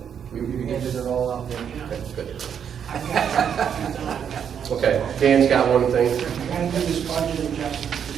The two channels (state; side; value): quieter; left; 8.1 dB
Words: We handed it all out there. Okay, good. I've got Okay, Dan's got one thing. I gotta do this budget adjustment